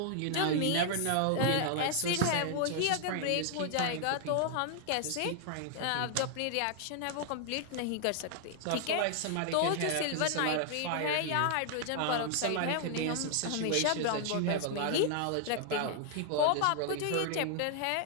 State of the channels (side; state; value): both; different; correlation 0.00